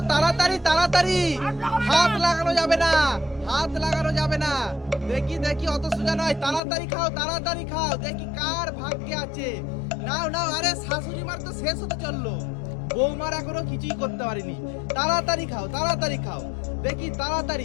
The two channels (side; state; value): right; drops out; at 6.6 s